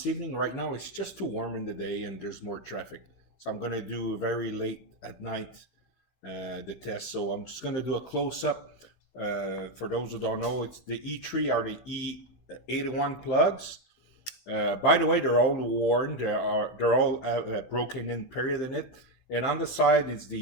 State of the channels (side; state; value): right; late; 15 ms